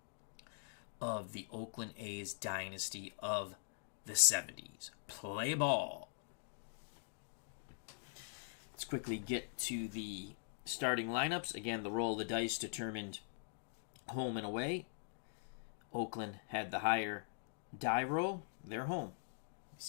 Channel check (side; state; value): right; silent; digital silence